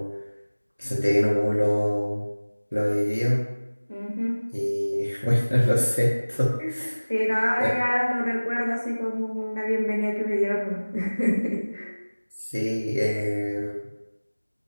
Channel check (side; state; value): both; inverted; correlation -1.00